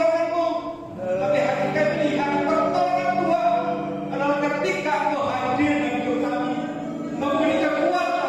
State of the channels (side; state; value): both; identical; correlation 1.00